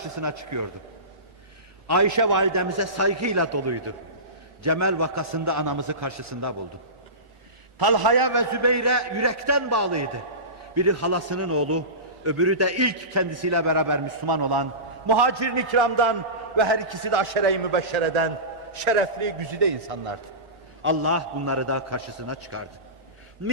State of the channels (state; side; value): late; left; 1.4 ms